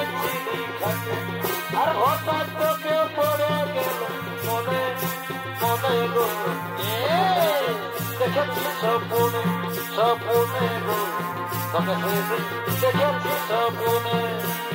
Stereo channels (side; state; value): both; identical; correlation 1.00